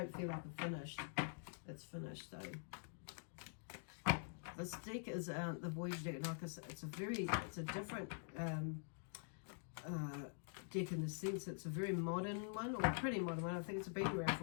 feel like I'm finished. It's finished though. This deck is the Voyager deck. Like I said, it's a different deck in the sense it's a very modern one, or a pretty modern one. I think it's been around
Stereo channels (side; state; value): right; silent; digital silence